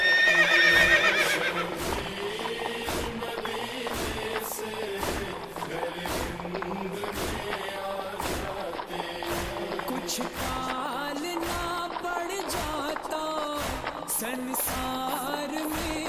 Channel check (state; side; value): identical; both; correlation 1.00